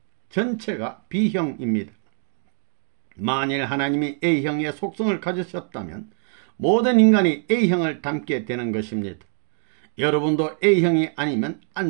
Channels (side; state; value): left; silent; 63 dB below the other